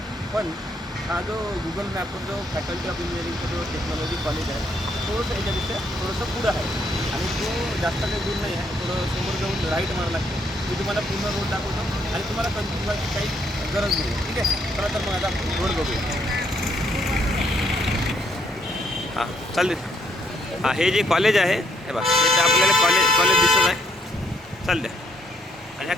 पण हा जो गुगल मॅपवर जो फॅकल्टी ऑफ इंजिनिअरिंगचा जो टेक्नॉलॉजी कॉलेज आहे, थोडंसं याच्यापेक्षा थोडंसं पुढं आहे आणि तो जास्त काही दूर नाही आहे. थोडं समोर जाऊन राईट मारावं लागते. मी तुम्हाला पूर्ण रोड दाखवतो आणि तुम्हाला कन्फ्यूज व्हायची काही गरज नाही. ठीक आहे, चला तर मग आता रोड बघूया. हां चालेल. हां, हे जे कॉलेज आहे हे बघा, इथे आपल्याला कॉलेज दिसत आहे. चालते आणि ह्या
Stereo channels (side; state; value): both; normal; correlation 0.71